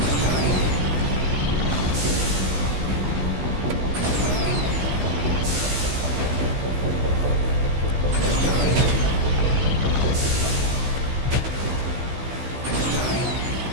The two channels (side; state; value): left; late; 15 ms